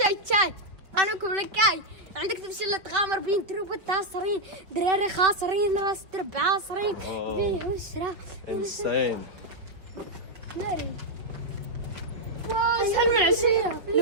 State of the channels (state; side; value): late; left; 4.8 ms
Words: تشاي انا كل كاي عندك تمشي تغامر بين تروب التاصرين دراري خاسرين راس درب عاصرين بيه وشرا Insane. ناري اسهل من عشية